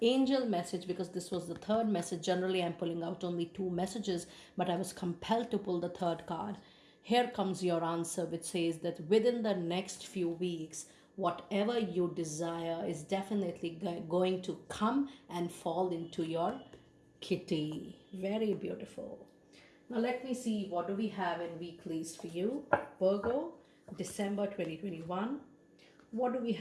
angel message, because this was the third message, generally I'm pulling out only 2 messages, but I was compelled to pull the third card. Here comes your answer, which says that within the next few weeks, whatever you desire is definitely going to come and fall into your kitty. Very beautiful. Now let me see, what do we have in weeklies for you? Virgo, December 2021. What do we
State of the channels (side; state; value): both; identical; correlation 1.00